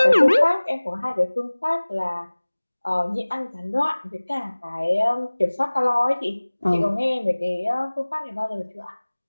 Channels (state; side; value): inverted; both; correlation -1.00